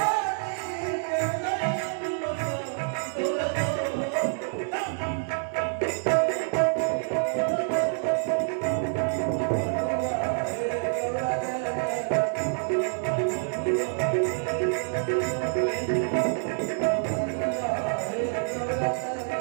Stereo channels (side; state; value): left; silent; digital silence